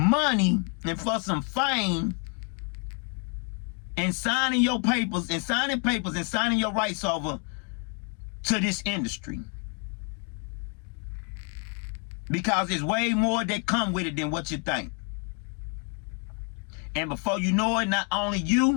and for some fame and signing your papers and signing your rights over to this industry. Because there's way more that come with it than what you think. And before you know it, not only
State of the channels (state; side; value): quieter; right; 36.9 dB